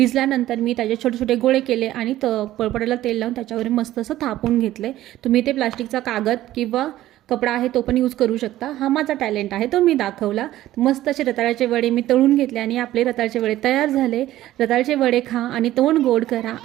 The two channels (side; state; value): left; quieter; 14.5 dB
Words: मी त्याचे छोटे छोटे गोळे केले आणि पळपटाला तेल लावून त्याच्यावर मस्त असं थापून घेतले. तुम्ही ते प्लास्टिकचा कागद किंवा कपडा आहे तो पण यूज करू शकता. हा माझा टॅलेंट आहे, तो मी दाखवला. मस्त असे रताळ्याचे वडे मी तळून घेतले आणि आपले रताळ्याचे वडे तयार झाले. रताळ्याचे वडे खा आणि तोंड गोड करा